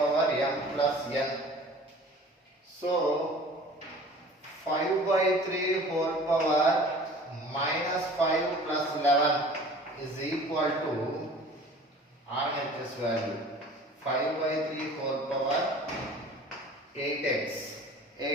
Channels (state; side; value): normal; both; correlation 0.45